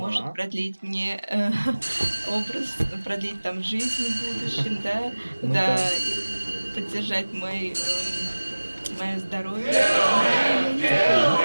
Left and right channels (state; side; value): inverted; both; correlation -1.00